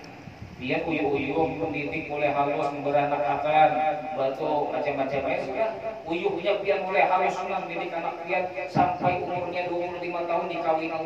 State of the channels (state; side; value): identical; both; correlation 1.00